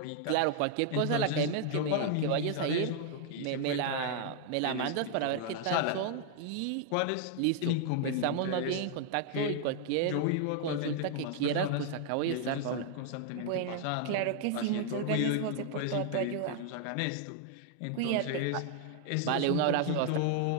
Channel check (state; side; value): different; both; correlation 0.00